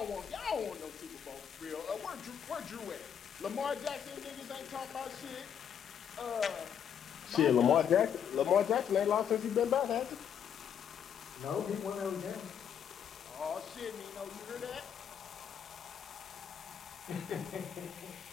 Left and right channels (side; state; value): right; quieter; 8.4 dB